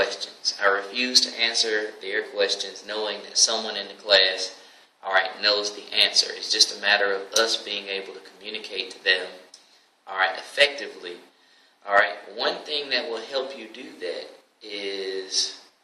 I refuse to answer their questions knowing that someone in the class, knows the answer. It's just a matter of us being able to communicate to them, effectively. One thing that will help you do that is,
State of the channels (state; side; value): identical; both; correlation 1.00